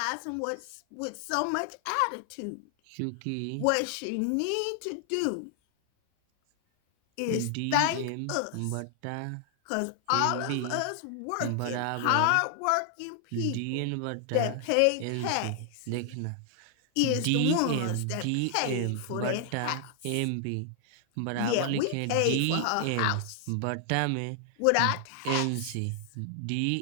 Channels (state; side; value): different; both; correlation 0.00